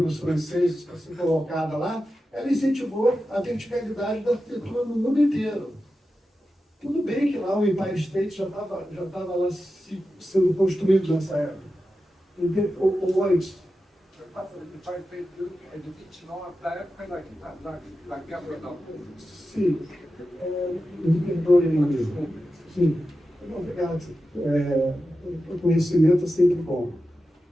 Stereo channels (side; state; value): both; normal; correlation 0.91